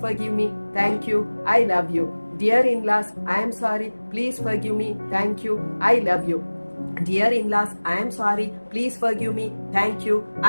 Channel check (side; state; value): both; inverted; correlation -1.00